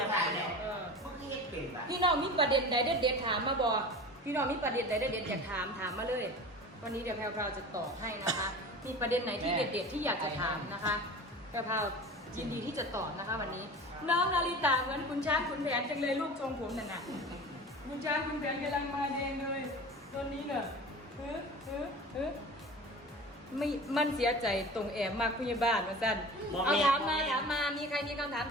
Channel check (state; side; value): normal; both; correlation 0.36